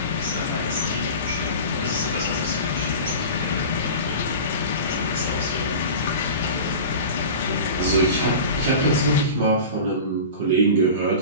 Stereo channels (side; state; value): both; inverted; correlation -0.33